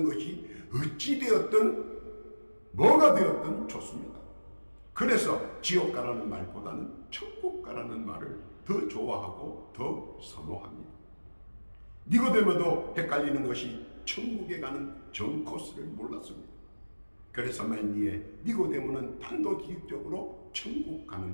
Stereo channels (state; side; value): inverted; both; correlation -1.00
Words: 것이 어찌 되었든 뭐가 되었든 좋습니다. 그래서 지옥 가라는 말보다는 천국 가라는 말을 더 좋아하고 더 선호합니다. 니고데모도 헷갈리는 것이 천국에 가는 정 코스를 몰랐습니다. 그래서 말미에 니고데모는 단도직입적으로 천국